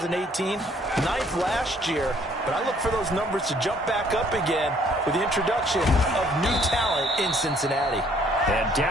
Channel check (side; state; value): both; normal; correlation 0.62